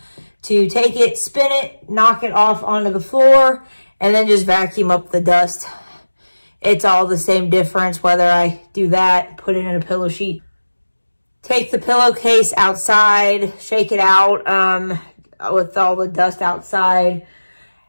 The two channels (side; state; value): both; inverted; correlation -1.00